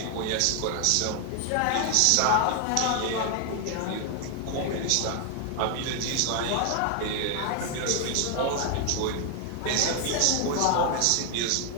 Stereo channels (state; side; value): different; both; correlation 0.00